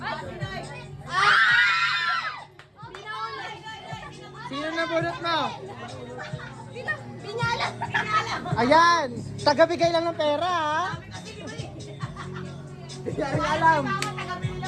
Sino nabunot mo? Pinyala! Ayan! Tagabigay lang ng pera, ha? Hindi rin alam.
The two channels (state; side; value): identical; both; correlation 1.00